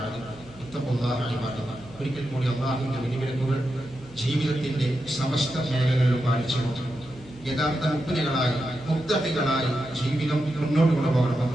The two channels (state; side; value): noise; right; hum, 22 dB below the sound